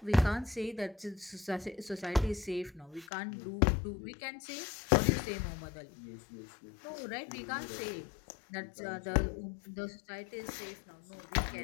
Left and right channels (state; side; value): drops out; right; at 3.1 s